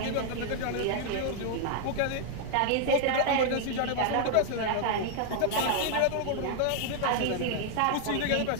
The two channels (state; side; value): different; both; correlation 0.00